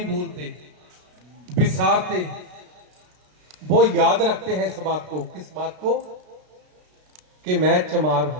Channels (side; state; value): left; late; 33 ms